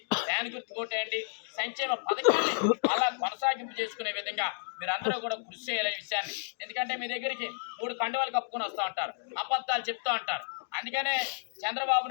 ఫ్యాన్ గుర్తు కొట్టేయండి. సంక్షేమ పథకాన్ని అలా కొనసాగింపు చేసుకునే విధంగా మీరందరూ కూడా కృషి చేయాలనే విషయాన్ని. ఎందుకంటే మీ దగ్గరికి 3 కండువాలు కప్పుకొని వస్తూ ఉంటారు, అబద్ధాలు చెప్తూ ఉంటారు. అందుకనే చంద్రబాబు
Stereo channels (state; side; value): silent; right; digital silence